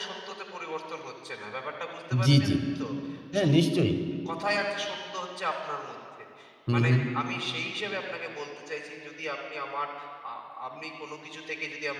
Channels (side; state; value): both; identical; correlation 1.00